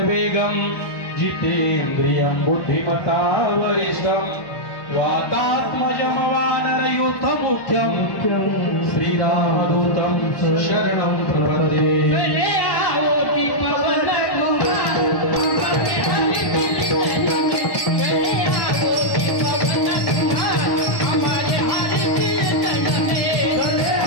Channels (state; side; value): late; right; 1.2 ms